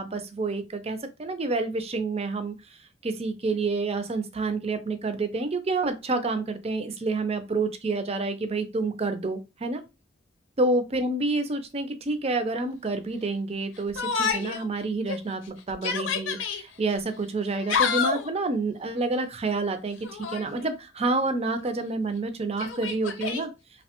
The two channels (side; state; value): both; normal; correlation 0.37